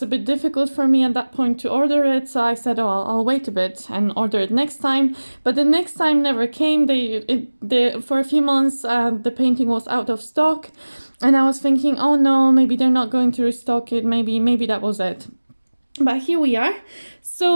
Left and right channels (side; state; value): both; inverted; correlation -1.00